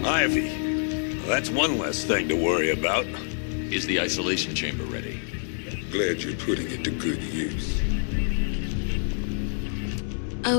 Ivy. Well, that's one less thing to worry about. Is the isolation chamber ready? Glad you're putting it to good use.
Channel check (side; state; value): right; silent; digital silence